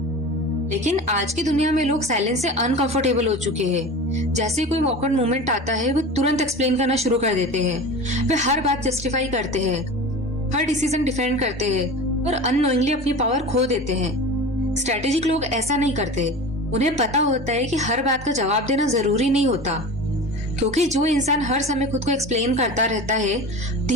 लेकिन आज की दुनिया में लोग साइलेंस से अनकंफर्टेबल हो चुके हैं। जैसे कोई ऑकवर्ड मोमेंट आता है, वो तुरंत एक्सप्लेन करना शुरू कर देते हैं। वे हर बात जस्टिफाई करते हैं, हर डिसीजन डिफेंड करते हैं और अननोइंगली अपनी पावर खो देते हैं। स्ट्रेटेजिक लोग ऐसा नहीं करते। उन्हें पता होता है कि हर बात का जवाब देना जरूरी नहीं होता, क्योंकि जो इंसान हर समय खुद को एक्सप्लेन करता रहता है,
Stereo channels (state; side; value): normal; both; correlation 0.33